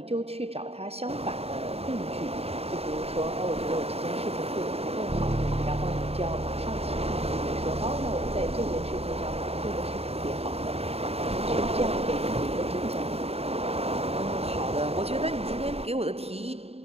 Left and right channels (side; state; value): left; late; 0.29 ms